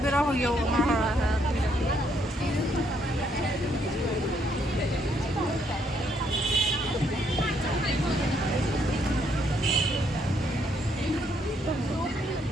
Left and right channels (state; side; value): normal; both; correlation 0.71